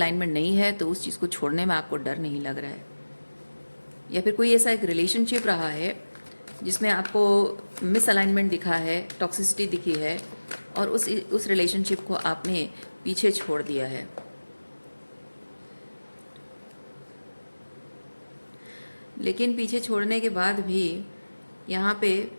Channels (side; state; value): both; inverted; correlation -1.00